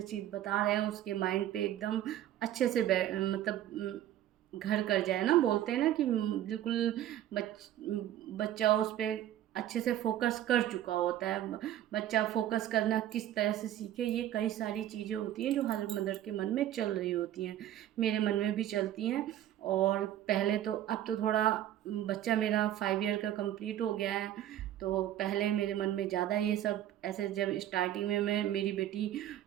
चीज़ बता रहे हैं उसके माइंड पे एकदम अच्छे से मतलब घर कर जाए ना, बोलते हैं ना कि बिल्कुल बच्चा उस पर अच्छे से फोकस कर चुका होता है। बच्चा फोकस करना किस तरह से सीखे, ये कई सारी चीज़ें होती हैं जो हर मदर के मन में चल रही होती हैं, मेरे मन में भी चलती हैं। और पहले तो, अब तो थोड़ा बच्चा मेरा 5 ईयर का कंप्लीट हो गया है, तो पहले मेरे मन में ज़्यादा ये सब ऐसे, जब स्टार्टिंग में मेरी बेटी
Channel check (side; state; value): left; quieter; 12.3 dB